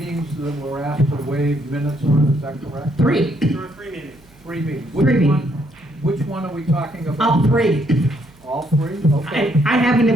that we're asked to waive minutes on, is that correct? Three. There are 3 meetings. Three meetings. Three Which one are we talking about? All three. All three? Okay. I have an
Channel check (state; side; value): noise; right; hum, 28 dB below the sound